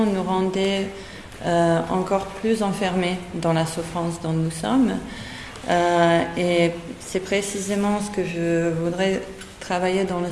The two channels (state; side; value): identical; both; correlation 1.00